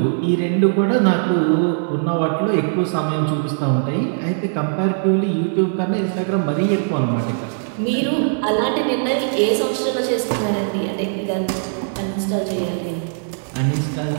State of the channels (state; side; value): silent; left; 65 dB below the other